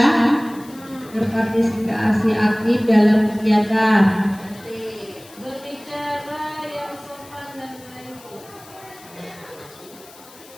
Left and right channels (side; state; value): left; noise; hiss, 22 dB below the sound